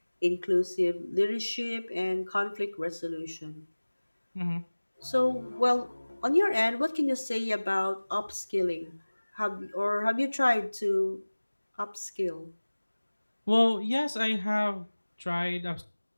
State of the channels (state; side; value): inverted; both; correlation -1.00